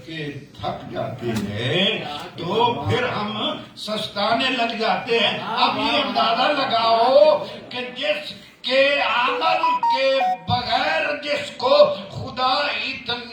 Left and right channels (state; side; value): identical; both; correlation 1.00